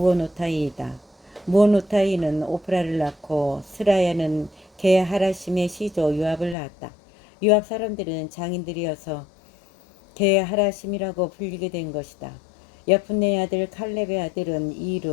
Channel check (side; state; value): right; drops out; at 6.6 s